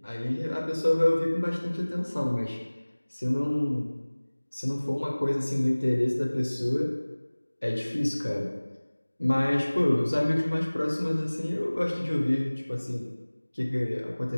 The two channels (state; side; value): inverted; both; correlation -1.00